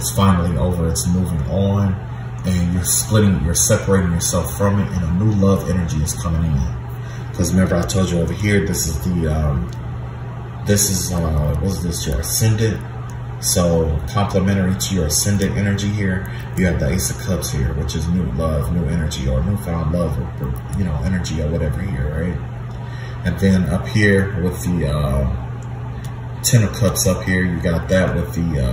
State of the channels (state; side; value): identical; both; correlation 1.00